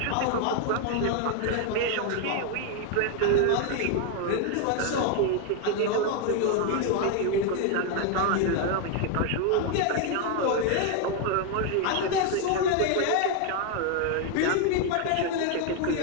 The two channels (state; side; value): different; both; correlation 0.01